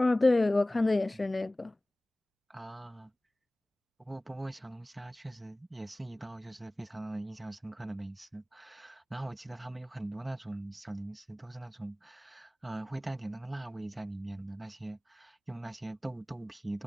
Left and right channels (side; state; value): both; normal; correlation 0.98